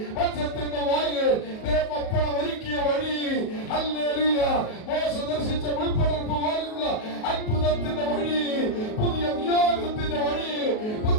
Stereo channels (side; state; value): right; late; 37 ms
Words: മത്സ്യത്തിന്റെ വായിൽ ദേവപ്പണം ഒരുക്കിയ വഴി, ഹല്ലേലൂയ, മോശ ദർശിച്ച മുൾപ്പടർപ്പ് പോലുള്ള അത്ഭുതത്തിന്റെ വഴി, പുതിയ നിയോഗത്തിന്റെ വഴി,